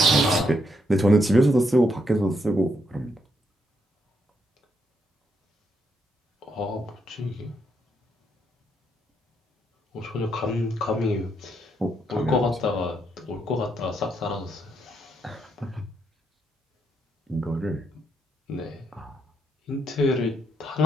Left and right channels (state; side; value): normal; both; correlation 0.77